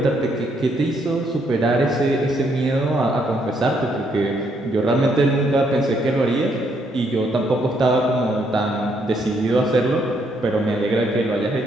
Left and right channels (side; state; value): both; normal; correlation 0.72